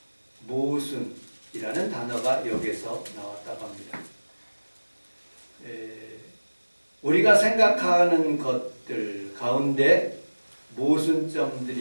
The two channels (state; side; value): inverted; both; correlation -1.00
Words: 모순이라는 단어가 여기서 나왔다고 합니다. 우리가 생각하는 것들 가운데